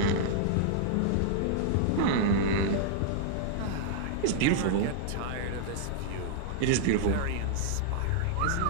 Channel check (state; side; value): different; both; correlation -0.01